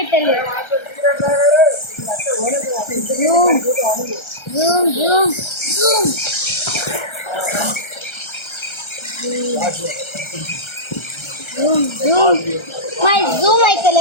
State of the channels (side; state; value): right; late; 1.3 ms